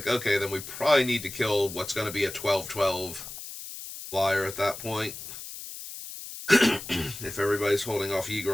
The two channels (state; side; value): noise; left; hiss, 11 dB below the sound